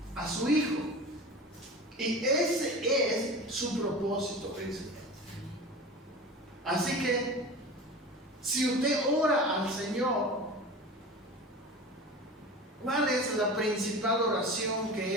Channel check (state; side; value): normal; both; correlation 0.33